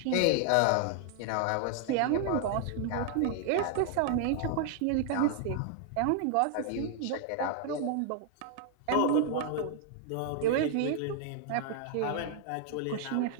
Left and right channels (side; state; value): both; different; correlation 0.00